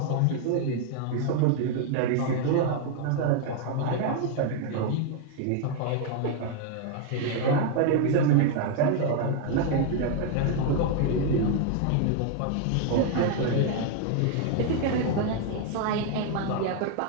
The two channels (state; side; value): different; both; correlation 0.00